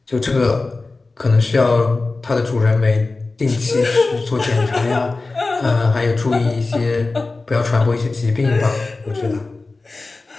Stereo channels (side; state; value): right; quieter; 3.5 dB